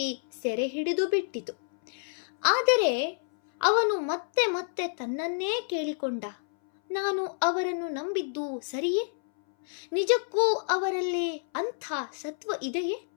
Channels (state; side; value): silent; right; 59 dB below the other